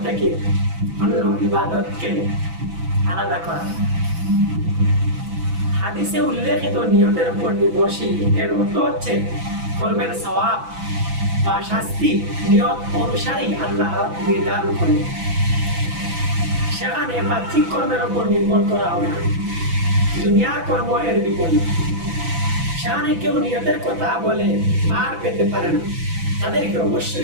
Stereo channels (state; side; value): late; left; 6.0 ms